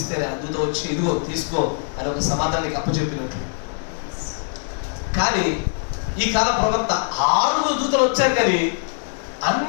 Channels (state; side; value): silent; right; digital silence